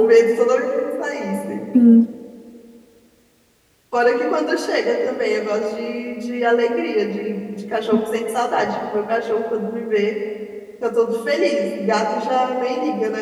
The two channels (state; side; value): identical; both; correlation 1.00